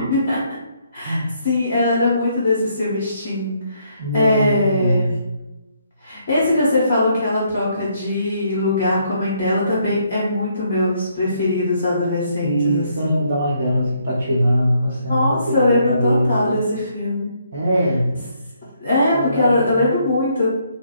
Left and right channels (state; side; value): inverted; both; correlation -0.71